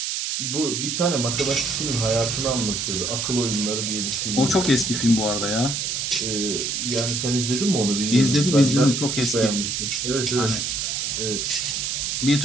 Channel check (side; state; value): right; noise; hiss, 1 dB below the sound